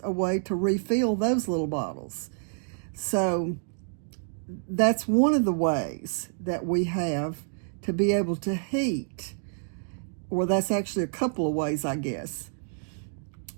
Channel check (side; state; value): left; silent; digital silence